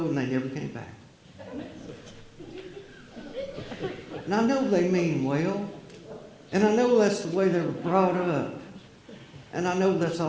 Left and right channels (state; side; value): identical; both; correlation 1.00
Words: and they never came back. And I know they mean well, and I know that's the way they were brought up, and I know that's